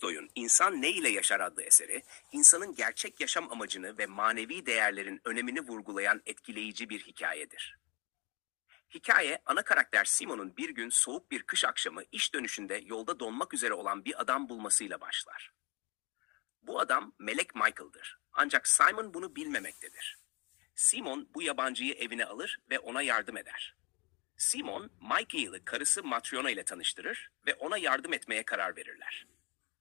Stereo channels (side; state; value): right; quieter; 28.0 dB